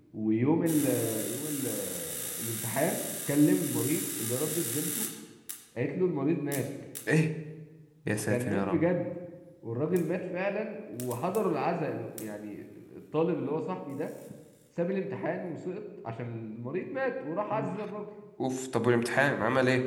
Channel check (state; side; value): identical; both; correlation 1.00